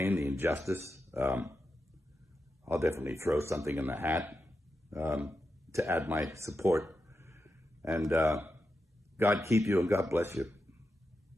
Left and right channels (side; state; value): both; normal; correlation 0.88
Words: the injustice. I'll definitely throw something in the hat to add my support. And God keep you and God bless you.